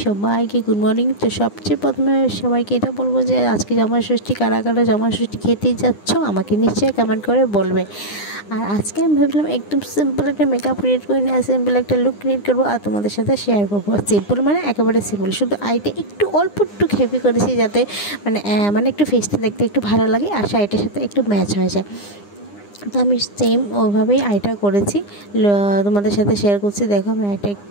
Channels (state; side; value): late; right; 9.8 ms